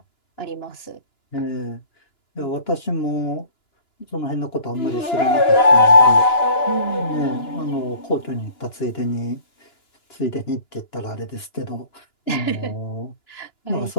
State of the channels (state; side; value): late; right; 2.9 ms